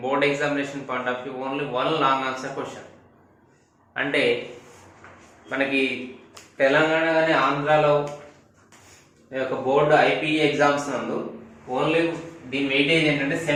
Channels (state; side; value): identical; both; correlation 1.00